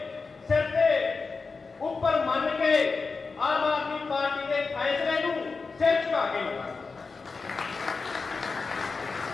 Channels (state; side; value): quieter; right; 4.4 dB